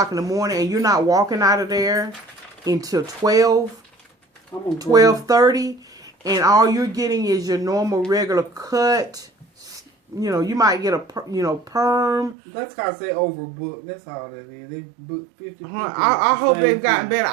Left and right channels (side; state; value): left; drops out; at 12.4 s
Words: in the morning and you're not walking out of there until 12:30, and all you're getting is your normal regular cut. You might get a perm. That's because they overbooked. That's all that is. They booked 50 people. I hope they've gotten better.